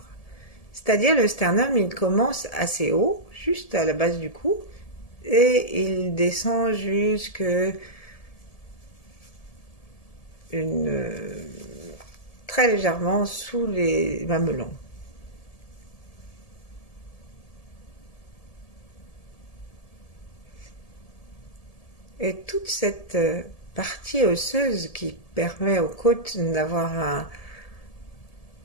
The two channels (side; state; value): right; late; 1.7 ms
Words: C'est-à-dire le sternum, il commence assez haut, juste à la base du cou, et il descend jusque très légèrement sous les mamelons. Et toute cette partie osseuse qui permet aux côtes d'avoir